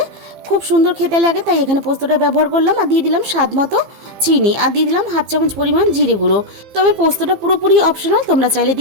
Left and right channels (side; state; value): left; late; 15 ms